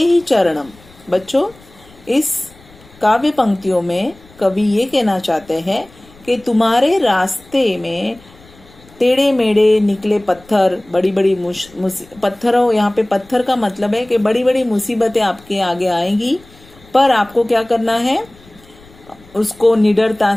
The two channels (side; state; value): left; noise; rumble, 25 dB below the sound